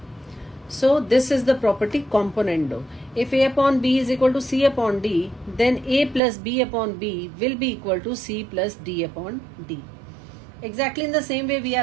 So this is the property componendo. If A upon B is equal to C upon D, then A plus B upon B will be equal to C plus D upon D. Exactly in the same way we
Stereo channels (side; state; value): left; drops out; at 6.2 s